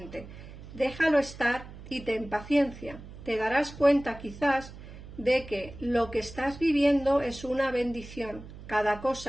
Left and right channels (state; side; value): noise; right; hum, 15 dB below the sound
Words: Déjalo estar y ten paciencia. Te darás cuenta quizás de que lo que estás viviendo es una bendición. Cada